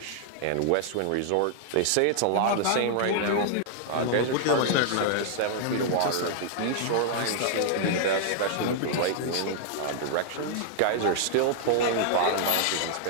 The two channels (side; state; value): both; different; correlation -0.01